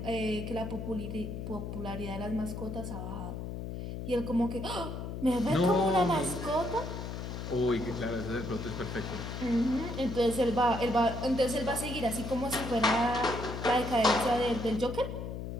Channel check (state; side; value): noise; left; hum, 6 dB below the sound